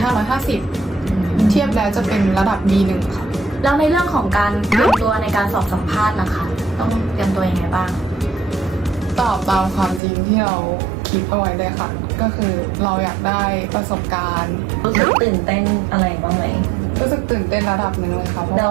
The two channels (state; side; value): drops out; left; at 10.0 s